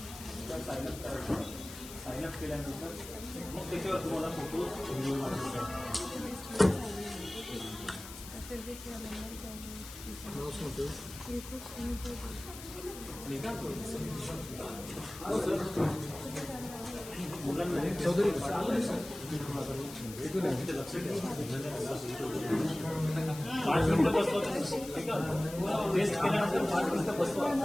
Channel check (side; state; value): left; noise; hiss, 13 dB below the sound